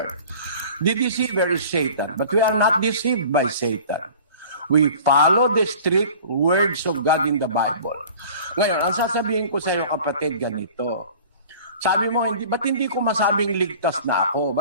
The deceiver is Satan, but we are not deceived by Satan. We follow the strict words of God in the Bible. Ngayon, ang sasabihin ko sa iyo, kapatid, ganito. Sabi mo, ba't hindi ko masabing ligtas na ako?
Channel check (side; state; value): both; inverted; correlation -0.45